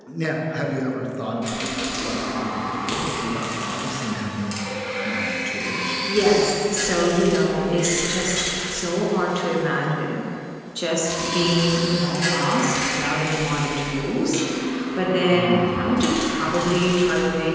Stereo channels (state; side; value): identical; both; correlation 1.00